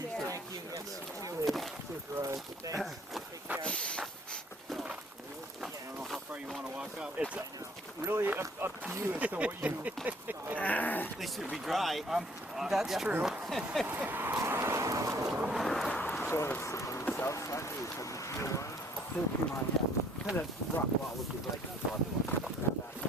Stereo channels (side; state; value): both; normal; correlation 0.59